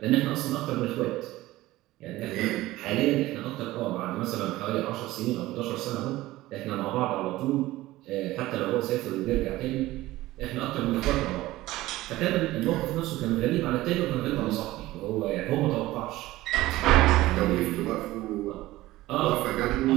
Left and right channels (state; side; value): quieter; left; 17.3 dB